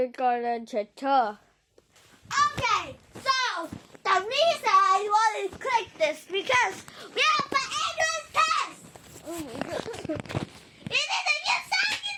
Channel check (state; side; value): identical; both; correlation 1.00